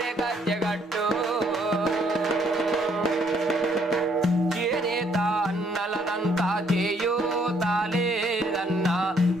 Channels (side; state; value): both; normal; correlation 0.67